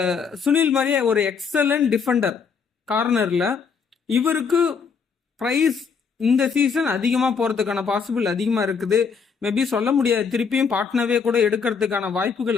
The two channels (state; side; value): quieter; right; 5.9 dB